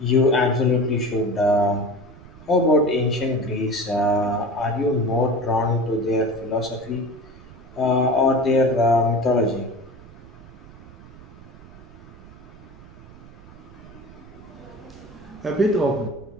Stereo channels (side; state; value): right; noise; rumble, 20 dB below the sound